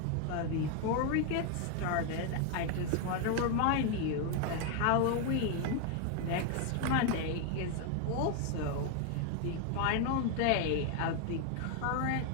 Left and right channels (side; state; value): both; different; correlation 0.01